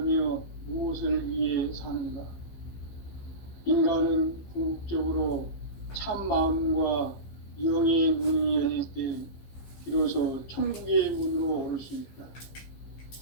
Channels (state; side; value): late; right; 15 ms